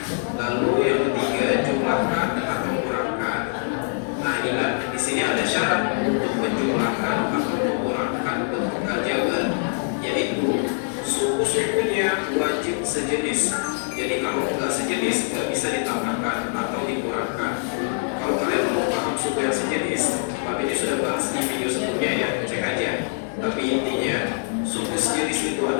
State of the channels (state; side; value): silent; right; 61 dB below the other